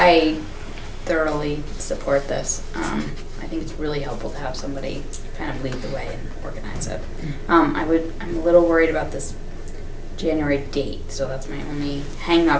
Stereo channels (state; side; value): identical; both; correlation 1.00